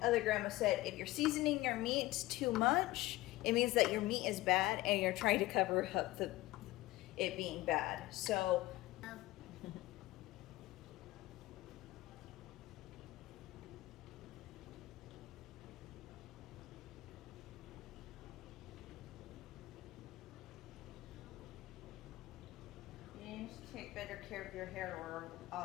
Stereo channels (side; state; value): right; quieter; 18.1 dB